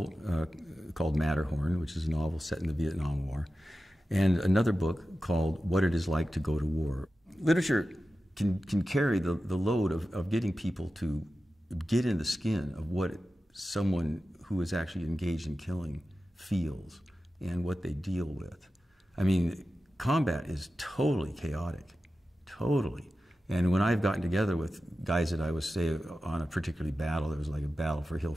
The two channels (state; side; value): normal; both; correlation 0.93